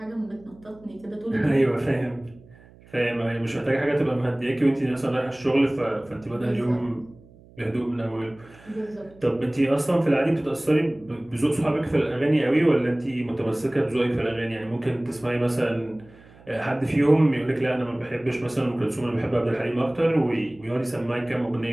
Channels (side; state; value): right; noise; hum, 24 dB below the sound